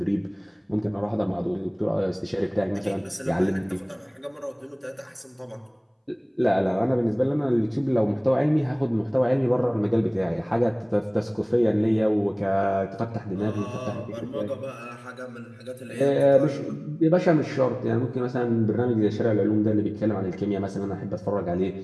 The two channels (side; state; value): both; identical; correlation 1.00